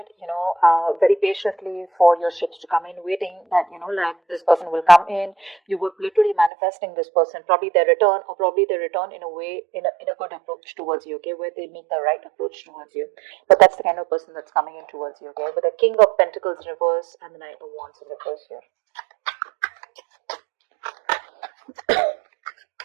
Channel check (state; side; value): drops out; left; at 6.5 s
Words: very patiently for your ships to come in, waiting that, like this person will come in. You were literally manifesting this person, probably their return, or probably their return in a way, in a good approach towards you, okay, where they make the right approach towards you. But that's the kind of person that's coming in towards you, okay, with the King of Pentacles in reverse and the Knight of Wands in reverse here.